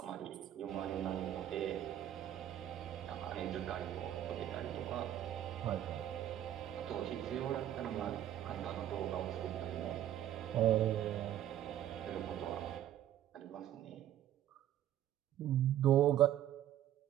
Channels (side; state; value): left; quieter; 11.8 dB